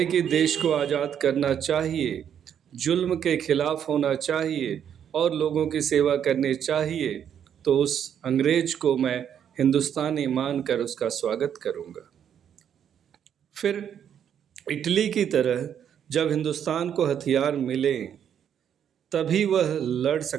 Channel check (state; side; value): quieter; left; 8.9 dB